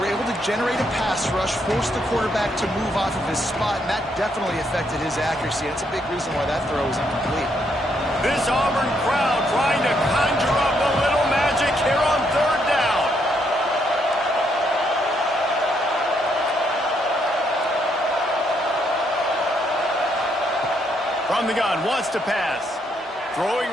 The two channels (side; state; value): both; normal; correlation 0.74